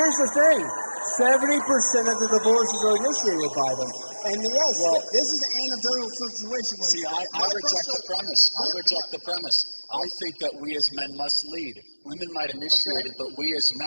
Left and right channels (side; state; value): both; inverted; correlation -1.00